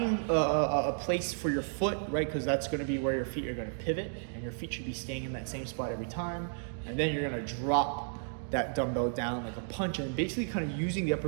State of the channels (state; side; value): silent; left; digital silence